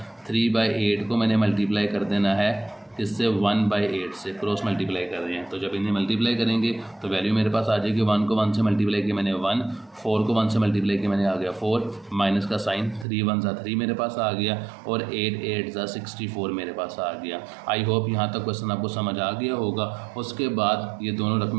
3/8 को मैंने मल्टीप्लाई कर देना है इससे 1/8 से, क्रॉस मल्टीप्लाई कर रहे हैं। तो जब इन्हें मल्टीप्लाई करेंगे तो वैल्यू मेरे पास आ जाएगी। 1 को 1 से मल्टीप्लाई किया मैंने 1, 4 को 1 से मल्टीप्लाई किया मैंने आ गया 4, माइनस का साइन, 3 1 ज़ा 3 मेरे पास आ गया, और 8 8 ज़ा 64 मेरे पास आ गया। आई होप यहाँ तक क्वेश्चन आपको समझ आ गया होगा। उसके बाद ये दोनों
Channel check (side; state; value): left; drops out; at 13.1 s